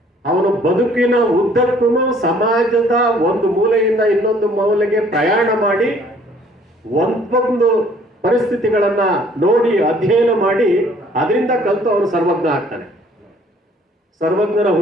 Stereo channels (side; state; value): both; normal; correlation 0.58